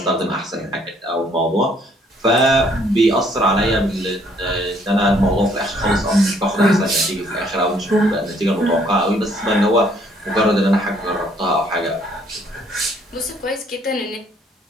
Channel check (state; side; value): normal; both; correlation 0.64